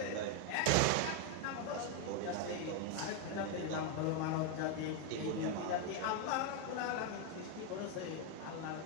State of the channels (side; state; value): both; different; correlation 0.01